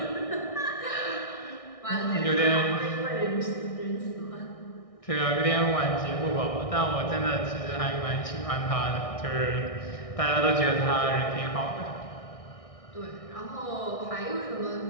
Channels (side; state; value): right; late; 1.6 ms